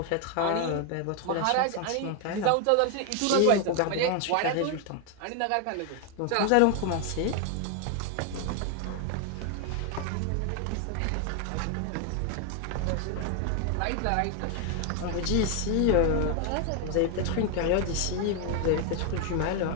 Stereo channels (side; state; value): both; different; correlation 0.01